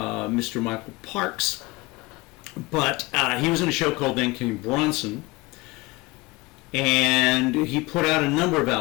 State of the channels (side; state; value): right; quieter; 23.2 dB